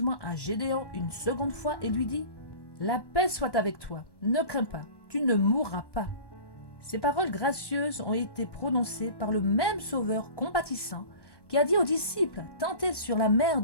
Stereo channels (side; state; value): right; late; 1.1 ms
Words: à Gédéon une seconde fois et lui dit La paix soit avec toi, ne crains pas, tu ne mourras pas. » Ces paroles gracieuses ont été prononcées par le même Sauveur compatissant qui a dit aux disciples tentés sur la mer